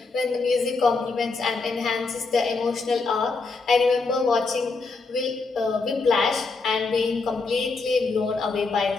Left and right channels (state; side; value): quieter; right; 4.0 dB